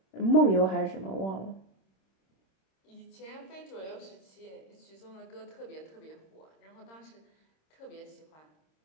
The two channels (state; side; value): late; right; 26 ms